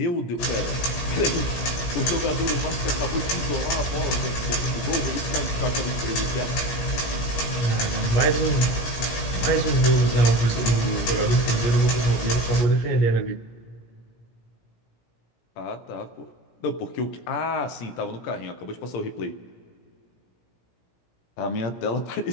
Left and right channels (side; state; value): right; late; 17 ms